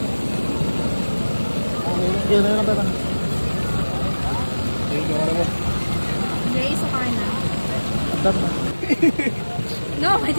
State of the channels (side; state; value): both; inverted; correlation -1.00